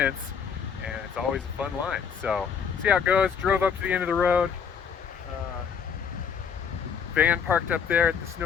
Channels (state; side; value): quieter; right; 7.0 dB